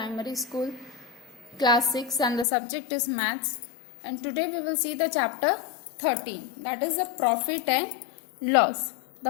School Class 6 and the subject is Maths, and today we will see the chapter 13, that is the profit and loss.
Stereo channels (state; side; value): drops out; right; at 2.5 s